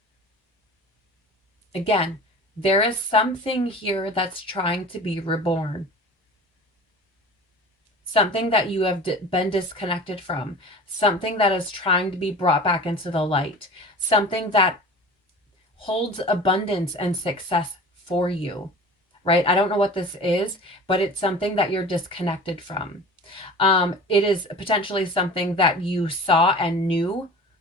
Again, there is something here that's trying to be reborn. Something that you have been disconnected from. Something that is trying to be brought back into the light. Something that holds abundance and success for you, right? I don't know what this is, but it's something that you're disconnected from. It is potentially something that you saw and knew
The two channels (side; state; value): both; normal; correlation 0.39